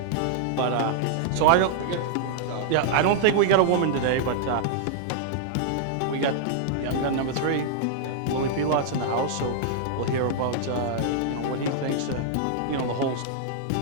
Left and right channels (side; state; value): both; different; correlation -0.01